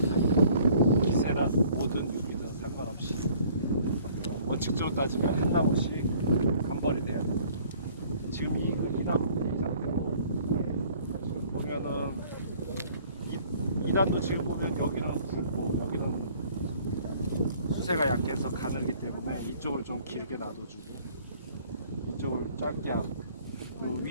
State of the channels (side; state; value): both; inverted; correlation -0.56